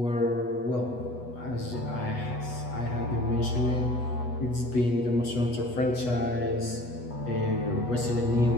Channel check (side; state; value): right; late; 8.2 ms